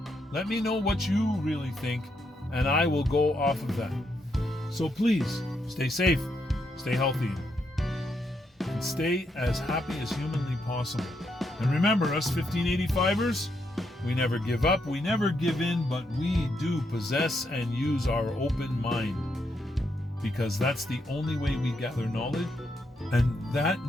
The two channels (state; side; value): normal; both; correlation 0.79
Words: Let me know what you really think, and I will go off of that. So please, stay safe, stay healthy, and stay as happy as humanly possible. And remember, us 1585ers, we never give up, we never give in, but we do possess and use our open mind. Because that's the only way we gather knowledge, and that